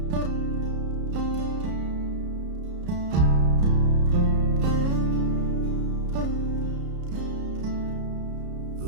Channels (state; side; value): late; left; 33 ms